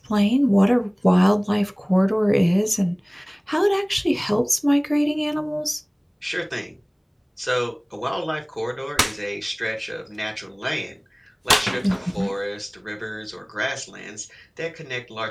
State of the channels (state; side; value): identical; both; correlation 1.00